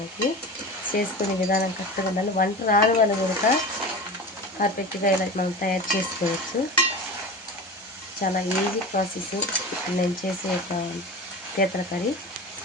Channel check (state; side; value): normal; both; correlation 0.31